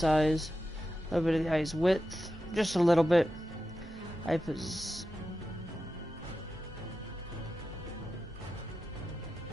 a little bit of the eye's width, just a little bit. Eye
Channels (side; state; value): both; normal; correlation 0.91